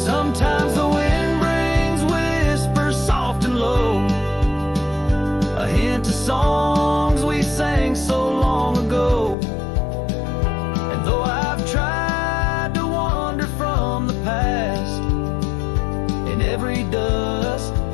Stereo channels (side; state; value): right; drops out; at 9.3 s